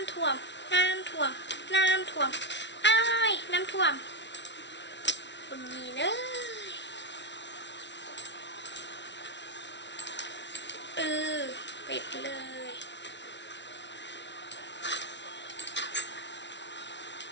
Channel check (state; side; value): late; right; 0.51 ms